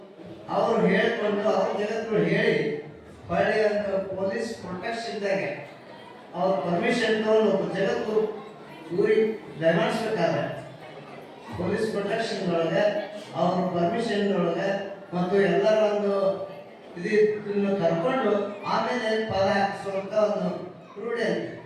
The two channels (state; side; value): identical; both; correlation 1.00